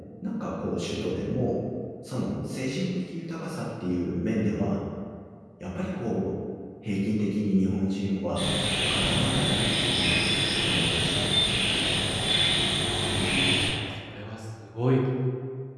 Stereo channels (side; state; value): both; identical; correlation 1.00